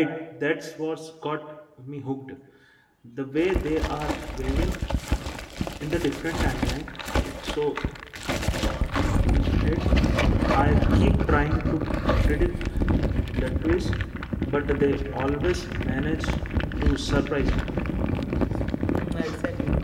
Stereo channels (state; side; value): identical; both; correlation 1.00